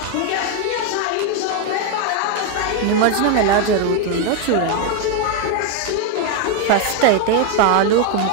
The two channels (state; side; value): different; both; correlation 0.01